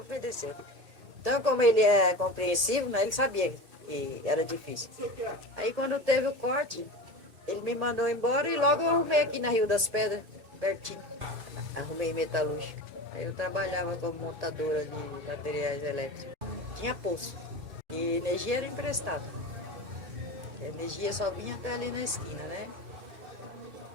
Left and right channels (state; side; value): late; left; 1.7 ms